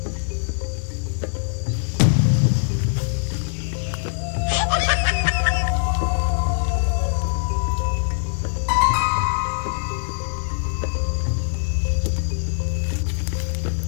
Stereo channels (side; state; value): right; silent; 64 dB below the other